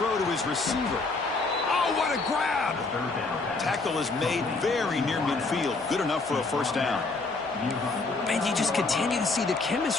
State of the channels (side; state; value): right; quieter; 3.7 dB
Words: to his receiver. Oh, what a grab! Tackle is made very near midfield. Good enough for a 1st down. And you just continue to see the